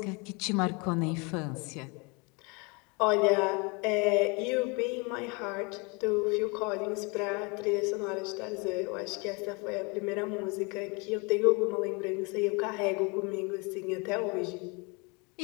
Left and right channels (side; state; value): right; quieter; 30.0 dB